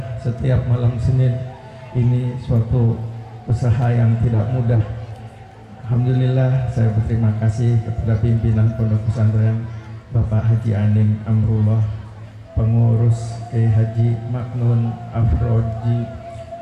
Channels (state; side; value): identical; both; correlation 1.00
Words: setiap malam Senin. Ini suatu usaha yang tidak mudah. Alhamdulillah, saya berterima kasih kepada pimpinan Pondok Pesantren Bapak Haji Aning Amrullah, pengurus Kiai Haji Maknun Afroji,